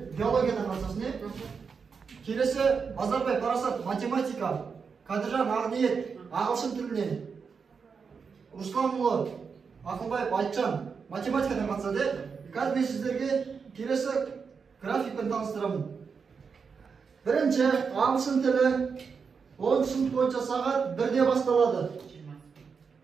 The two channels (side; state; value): left; quieter; 5.7 dB